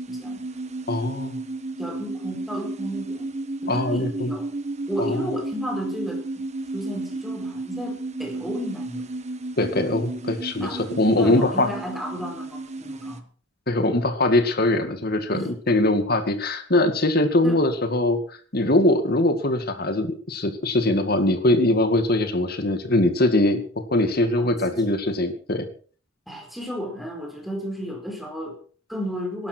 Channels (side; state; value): both; normal; correlation 0.38